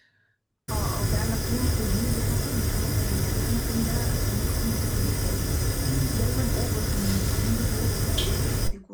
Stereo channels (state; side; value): identical; both; correlation 1.00